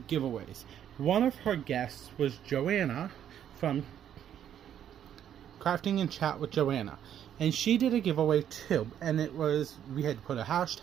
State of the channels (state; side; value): quieter; left; 9.9 dB